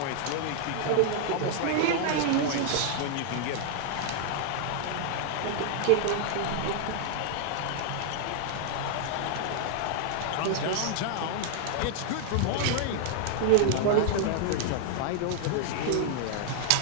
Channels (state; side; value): different; both; correlation -0.01